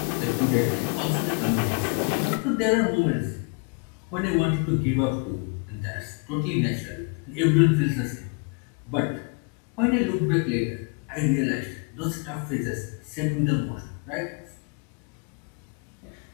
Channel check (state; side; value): quieter; right; 35.7 dB